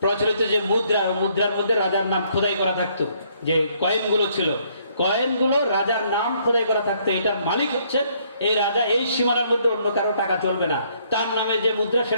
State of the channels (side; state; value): both; inverted; correlation -0.67